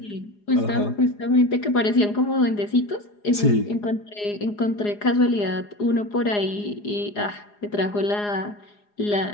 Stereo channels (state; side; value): late; right; 4.8 ms